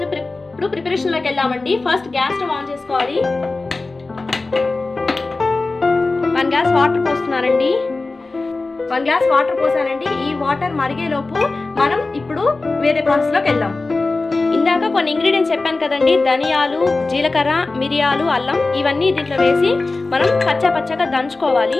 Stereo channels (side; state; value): right; quieter; 3.5 dB